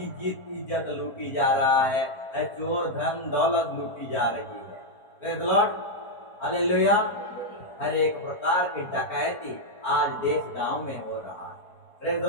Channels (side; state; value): right; late; 4.4 ms